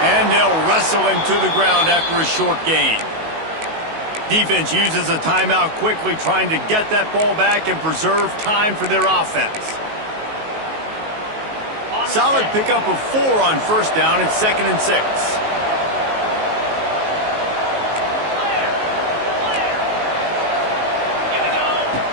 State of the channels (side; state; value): left; late; 19 ms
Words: And they'll wrestle him to the ground after a short gain. Defense uses a timeout quickly, trying to get that ball back and preserve time for their offense. Solid pickup of 4 on 1st down. It's 2nd and 6.